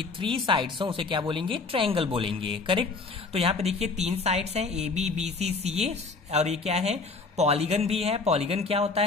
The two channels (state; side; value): quieter; right; 4.0 dB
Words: 3 साइड्स हो, उसे क्या बोलेंगे? ट्रायंगल बोलेंगे, करेक्ट। तो यहाँ पे देखिए 3 साइड्स हैं, AB BC CA, और ये क्या है? पॉलीगन भी है। पॉलीगन क्या होता